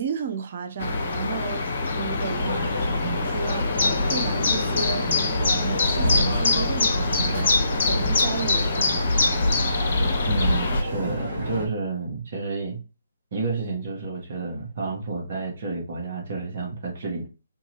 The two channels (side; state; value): both; inverted; correlation -0.73